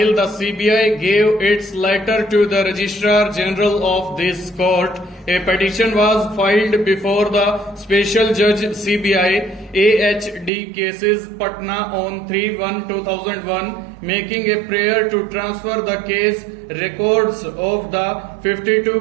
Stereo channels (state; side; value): drops out; left; at 10.5 s